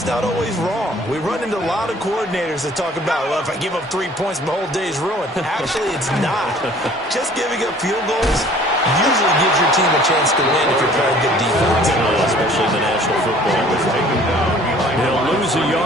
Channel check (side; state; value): both; normal; correlation 0.53